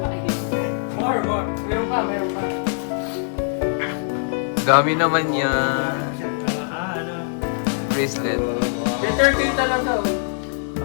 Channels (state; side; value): silent; right; digital silence